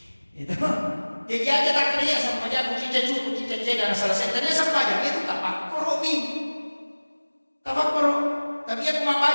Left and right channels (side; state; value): both; inverted; correlation -1.00